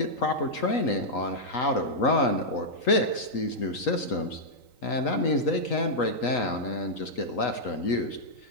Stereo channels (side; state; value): right; late; 3.9 ms